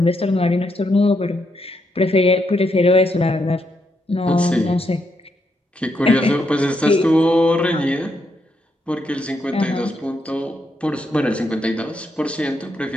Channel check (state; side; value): normal; both; correlation 0.79